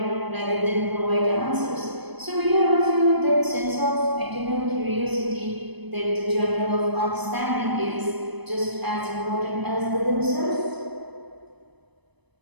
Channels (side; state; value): left; late; 1.0 ms